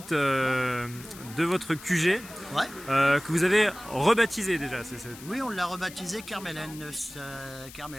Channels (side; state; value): left; noise; hiss, 17 dB below the sound